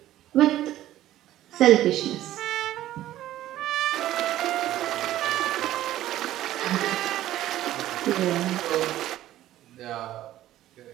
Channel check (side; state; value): left; quieter; 13.8 dB